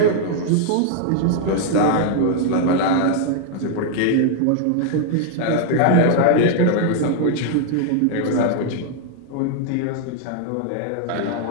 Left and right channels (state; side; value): different; both; correlation 0.00